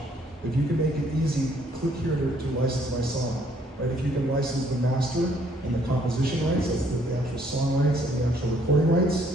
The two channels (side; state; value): both; normal; correlation 0.65